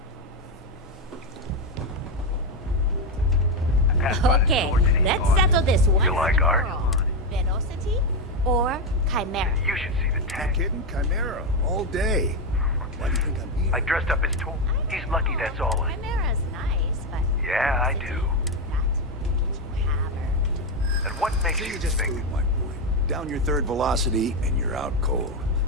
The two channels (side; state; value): both; normal; correlation 0.08